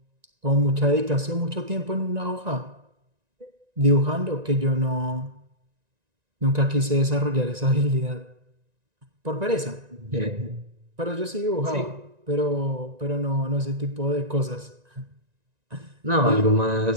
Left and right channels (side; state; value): left; late; 1.9 ms